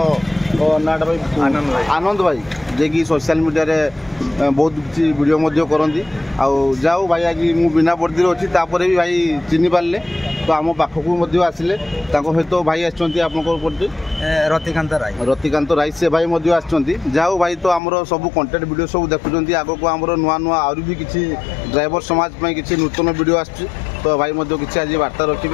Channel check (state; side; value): drops out; right; at 17.8 s